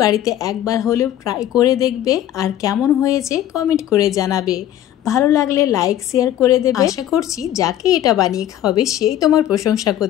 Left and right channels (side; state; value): right; quieter; 12.1 dB